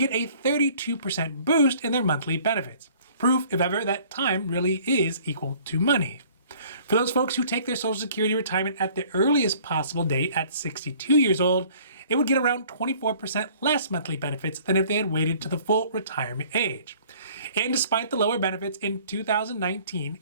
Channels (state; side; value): inverted; both; correlation -0.54